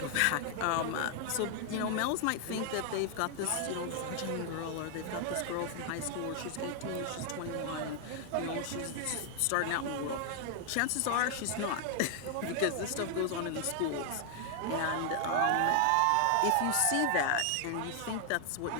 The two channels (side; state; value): both; different; correlation 0.00